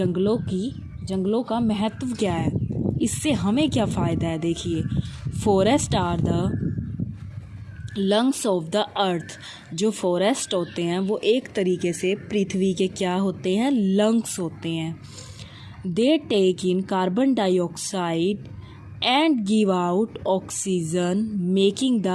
का महत्व क्या है, इससे हमें क्या फ़ायदा है। देखिए, forest are the lungs of the earth. जो फॉरेस्ट होते हैं वो एक तरीके से पृथ्वी के क्या होते हैं, लंग्स होते हैं। They take in carbon dioxide and give out oxygen making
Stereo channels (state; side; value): identical; both; correlation 1.00